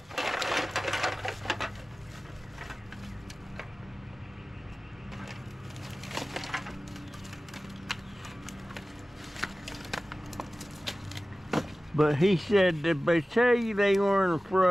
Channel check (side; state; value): both; normal; correlation 0.97